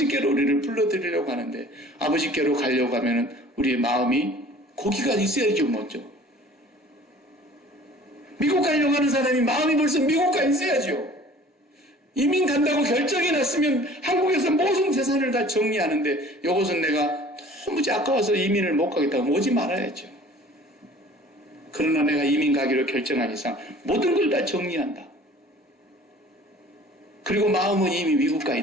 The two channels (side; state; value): both; normal; correlation 0.48